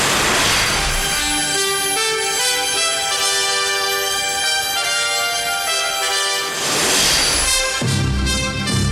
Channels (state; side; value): identical; both; correlation 1.00